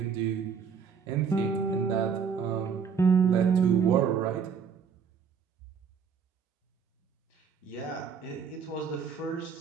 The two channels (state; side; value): quieter; left; 6.5 dB